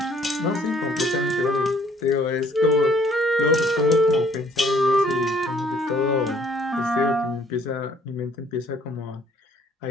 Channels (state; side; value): normal; both; correlation 0.61